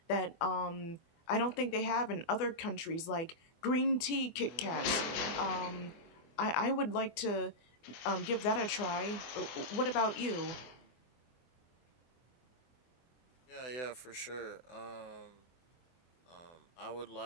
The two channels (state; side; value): late; right; 24 ms